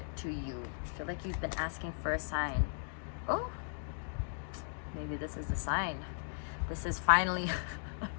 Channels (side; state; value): right; silent; digital silence